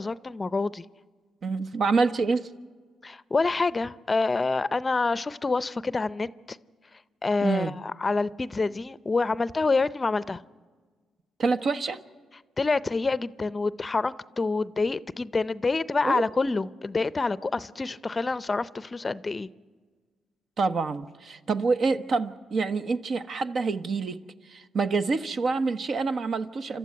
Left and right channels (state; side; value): normal; both; correlation 0.89